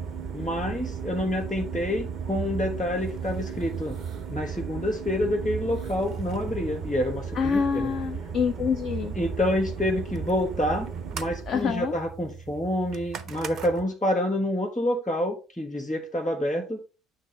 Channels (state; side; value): normal; both; correlation 0.68